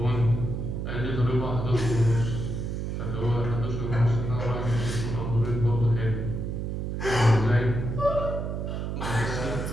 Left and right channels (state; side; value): noise; right; hum, 3 dB below the sound